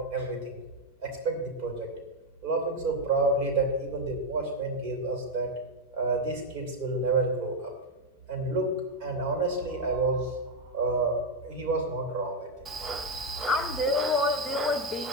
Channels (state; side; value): normal; both; correlation 0.04